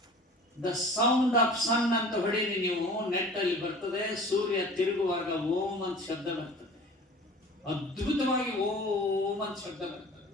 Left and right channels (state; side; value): normal; both; correlation 0.42